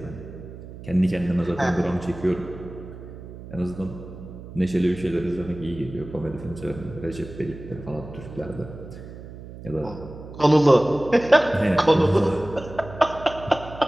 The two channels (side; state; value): right; noise; hum, 14 dB below the sound